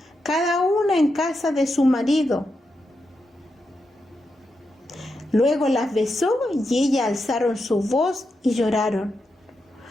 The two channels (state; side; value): normal; both; correlation 0.86